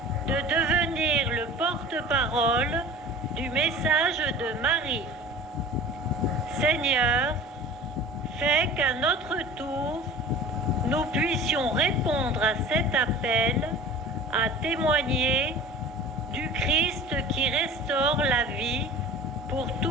de devenir le porte-parole du message de Marie. Seigneur, fais qu'à notre tour, nous puissions répondre à cet appel à témoigner du Christ qui restaure la vie pour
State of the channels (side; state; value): both; normal; correlation 0.40